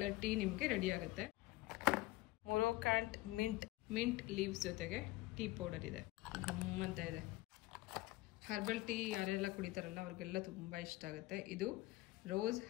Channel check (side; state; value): right; quieter; 19.0 dB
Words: ಟೀ ನಿಮಗೆ ರೆಡಿ ಆಗುತ್ತೆ. ಮೊರೊಕ್ಯಾಂಟ್ ಮಿಂಟ್ ಲೀವ್ಸ್ ಜೊತೆಗೆ ಟೀ ಪೌಡರ್ ಇದೆ. ಗಮ್ಮಂತ ಇದೆ. ಹರ್ಬಲ್ ಟೀ ಯಾರೆಲ್ಲ ಕುಡಿತಾರಲ್ಲ ಅವ್ರಿಗೆಲ್ಲ ತುಂಬ ಇಷ್ಟ ಆಗುತ್ತೆ. ಇದು ರೋಸ್